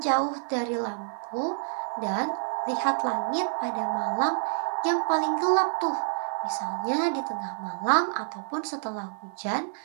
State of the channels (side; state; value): left; silent; 59 dB below the other